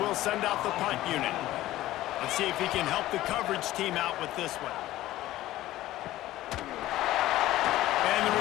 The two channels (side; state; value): right; quieter; 15.4 dB